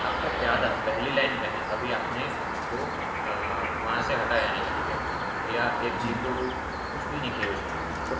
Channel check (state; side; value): identical; both; correlation 1.00